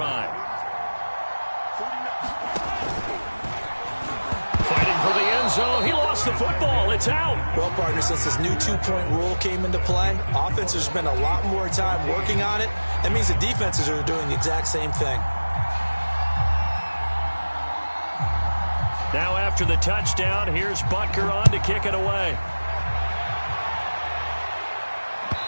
Fighting for the end zone. He lost the football. It's out. Well, partner, since this new 2-point rule came into play, offenses spend a lot more time working on it. That means the defenses are doing the exact same thing. Now after the touchdown, here's Butker on to kick it away.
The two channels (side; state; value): both; inverted; correlation -1.00